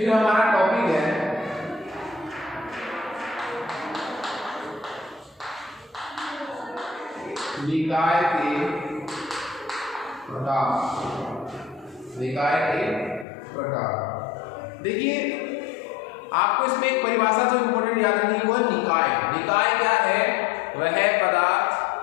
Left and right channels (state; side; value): drops out; right; at 13.2 s